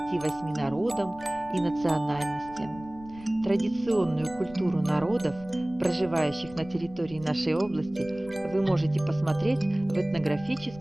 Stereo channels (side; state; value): left; noise; rumble, 19 dB below the sound